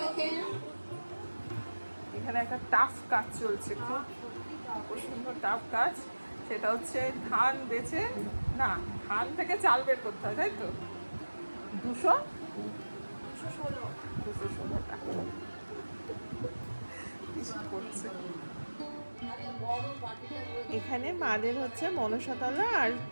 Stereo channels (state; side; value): inverted; both; correlation -1.00